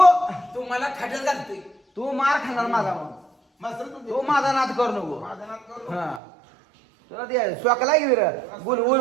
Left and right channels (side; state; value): left; drops out; at 6.2 s